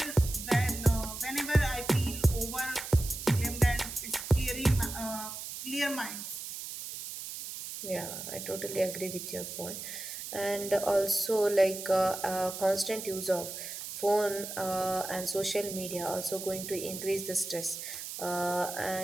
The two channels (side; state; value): right; noise; hiss, 8 dB below the sound